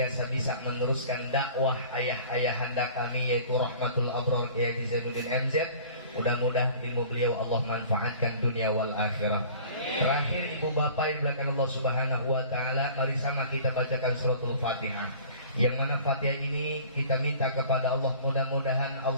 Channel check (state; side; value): inverted; both; correlation -0.46